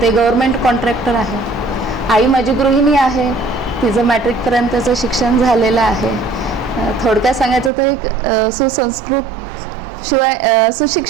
ते गव्हर्मेंट कॉन्ट्रॅक्टर आहे. आई माझी गृहिणी आहे, तिचं मॅट्रिकपर्यंतचं शिक्षण झालेलं आहे. थोडक्यात सांगायचं तर एक सुसंस्कृत शिवाय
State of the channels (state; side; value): drops out; left; at 7.7 s